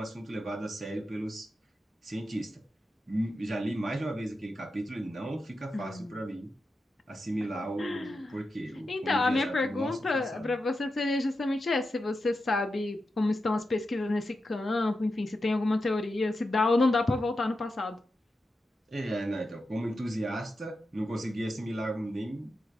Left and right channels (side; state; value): both; normal; correlation 0.89